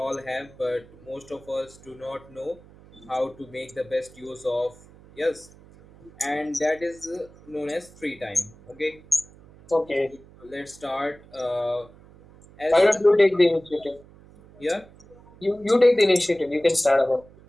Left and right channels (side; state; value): right; noise; hum, 23 dB below the sound